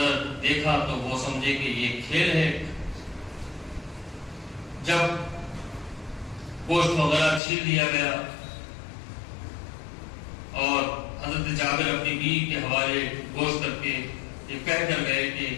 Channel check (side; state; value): right; drops out; at 7.4 s